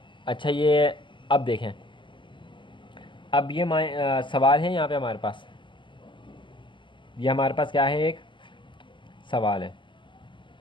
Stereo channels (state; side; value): late; right; 0.24 ms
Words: अच्छा, ये अब देखें, अब ये सवाल है यहाँ पे हमारे पास, ये हमारे पास क्या है, एक सवाल है।